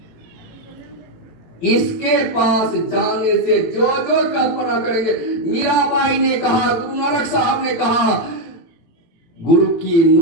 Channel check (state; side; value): late; right; 18 ms